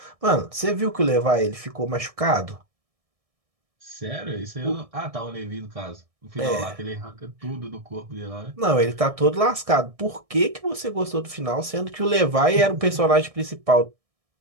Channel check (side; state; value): left; late; 1.6 ms